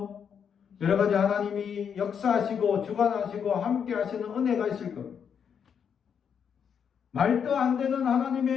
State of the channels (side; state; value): right; quieter; 7.4 dB